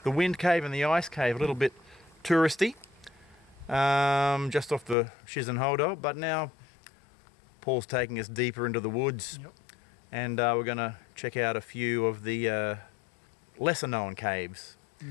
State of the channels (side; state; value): right; drops out; at 5.0 s